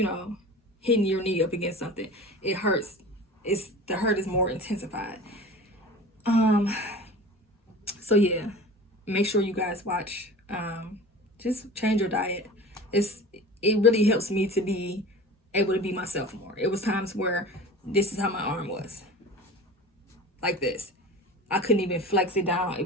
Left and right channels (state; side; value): normal; both; correlation 0.37